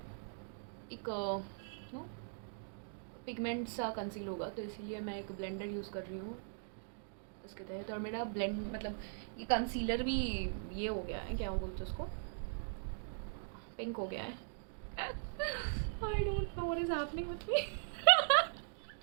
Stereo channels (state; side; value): silent; left; digital silence